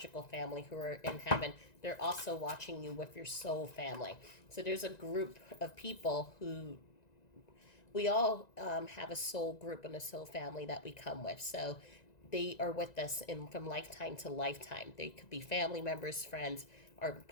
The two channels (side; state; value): right; late; 1.9 ms